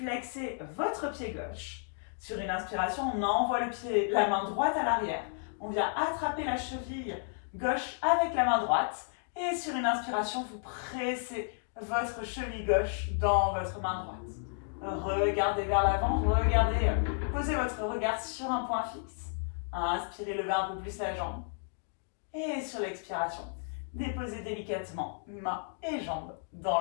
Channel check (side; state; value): right; silent; digital silence